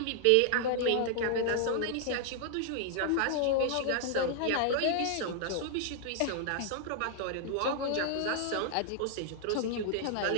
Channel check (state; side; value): different; both; correlation 0.00